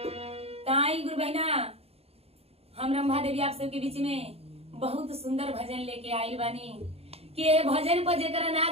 ताई गुरु बहना हम रंभा देवी आप सबके बीच में बहुत सुंदर भजन लेके आई बानी कि ये भजन पर जेकरा ना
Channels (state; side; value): late; left; 0.29 ms